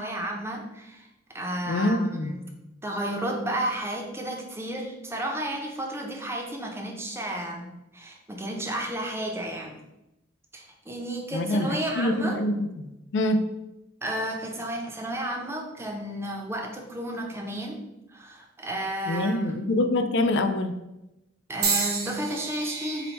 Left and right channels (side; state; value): both; normal; correlation 0.36